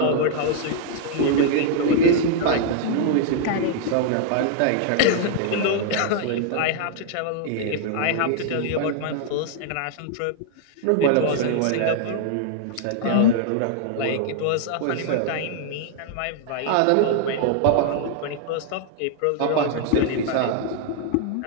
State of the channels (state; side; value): different; both; correlation 0.00